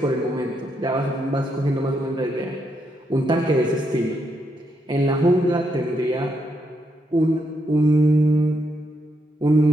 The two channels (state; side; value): normal; both; correlation 0.79